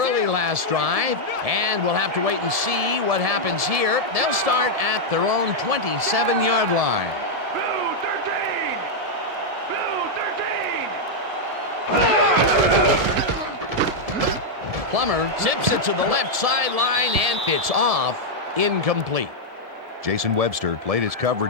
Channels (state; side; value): late; left; 1.7 ms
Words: last drive, and we'll have to wait and see what happens here. They'll start at their own 27-yard line. Plummer zips it to the left sideline, and it's off. Incomplete. Jason Webster played his